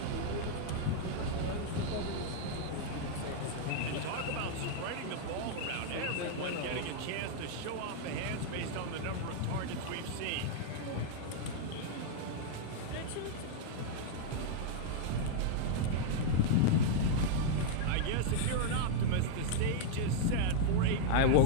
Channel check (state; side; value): different; both; correlation -0.01